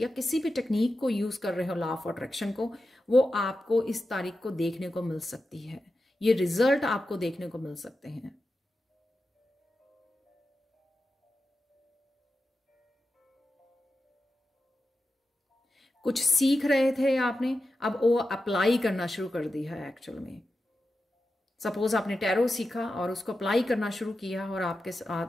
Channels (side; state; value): both; normal; correlation 0.91